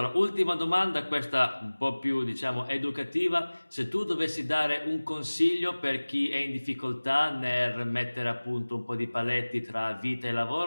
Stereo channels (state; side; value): inverted; both; correlation -1.00